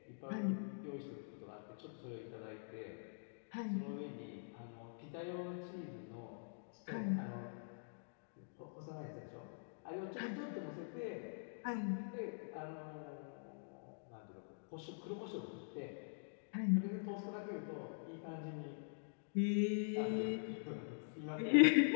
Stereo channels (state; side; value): silent; right; digital silence